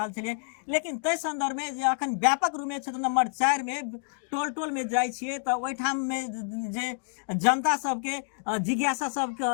छलियै, लेकिन तै संदर्भ में जे अखन व्यापक रूप में क्षेत्र नंबर 4 में टोल टोल में जाइ छियै तऽ ओहिठाम में जे जनता सबके जिज्ञासा सब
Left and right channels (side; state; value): right; silent; 59 dB below the other